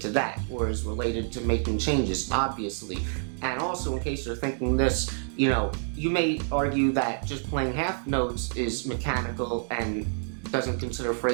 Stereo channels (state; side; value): silent; left; digital silence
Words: to that, or is related to making changes, obviously. And also, in case you're thinking this, you may argue that just playing half notes is mechanical and doesn't consider